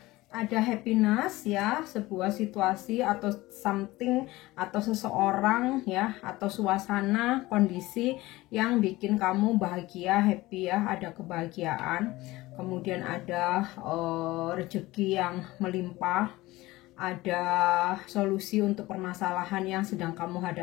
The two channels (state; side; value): quieter; right; 19.1 dB